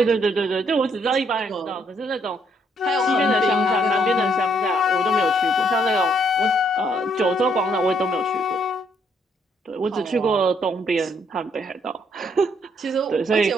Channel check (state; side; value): normal; both; correlation 0.70